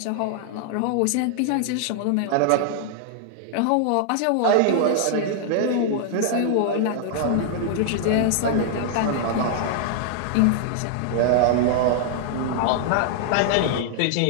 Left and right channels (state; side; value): different; both; correlation -0.01